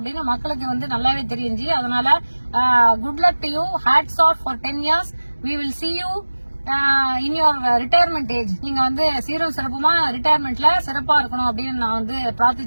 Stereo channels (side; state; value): both; inverted; correlation -1.00